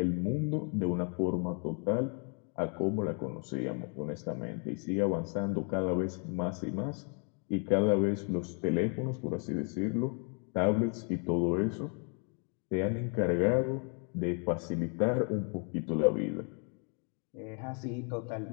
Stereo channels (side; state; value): right; quieter; 39.9 dB